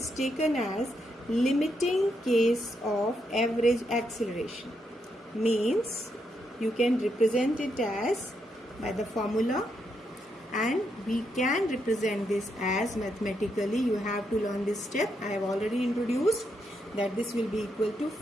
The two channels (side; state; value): both; normal; correlation 0.80